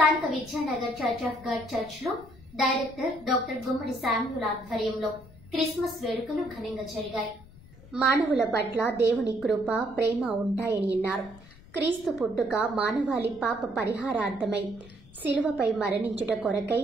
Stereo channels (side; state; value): left; noise; rumble, 21 dB below the sound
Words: Vidyanagar church of God church లో director doctor గుమ్మడి Samuel ఆధ్వర్యంలో క్రిస్మస్ వేడుకలు ఘనంగా జరిగాయి. మానవుల పట్ల దేవుని కృప, ప్రేమ ఉంటాయని అన్నారు. క్రీస్తు పుట్టుక మానవాళి పాప పరిహారార్థమై శిలువపై మరణించుట కొరకై